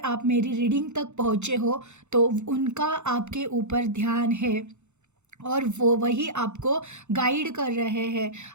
मेरी रीडिंग तक पहुँचे हो तो उनका आपके ऊपर ध्यान है और वो वही आपको गाइड कर रहे हैं।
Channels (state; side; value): late; left; 0.83 ms